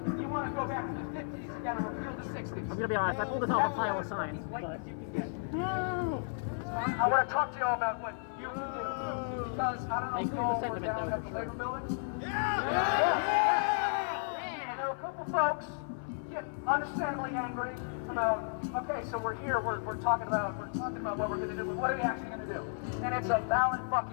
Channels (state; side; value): silent; right; 55 dB below the other